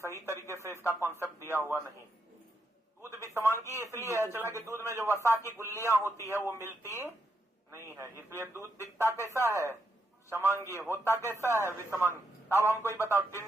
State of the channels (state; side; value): normal; both; correlation 0.81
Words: तरीके से इसका कॉन्सेप्ट दिया हुआ नहीं। दूध विषमांगी इसलिए है चला कि दूध में जो वसा की गुल्लियां होती है वो मिलती नहीं है, इसलिए दूध दिखता कैसा है? समांगी। होता कैसा है? विषमांगी। अब हमको ये बताओ,